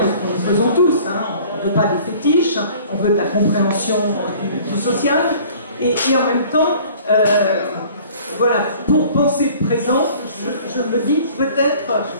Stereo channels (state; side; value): inverted; both; correlation -0.50